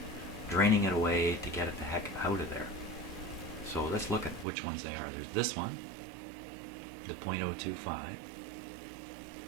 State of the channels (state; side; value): drops out; left; at 4.5 s